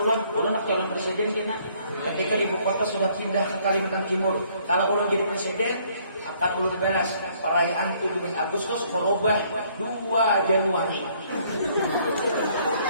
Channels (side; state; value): both; inverted; correlation -0.63